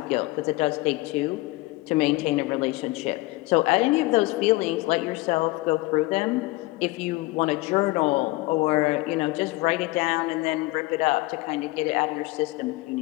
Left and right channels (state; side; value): quieter; right; 21.1 dB